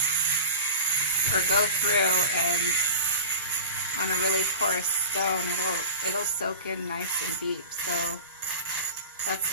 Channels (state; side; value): inverted; both; correlation -0.36